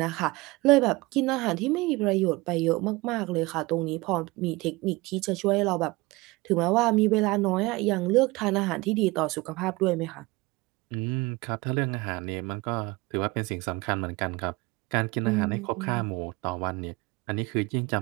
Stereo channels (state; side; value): quieter; left; 22.6 dB